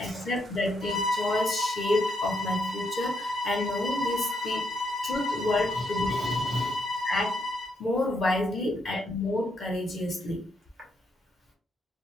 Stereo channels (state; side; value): normal; both; correlation 0.77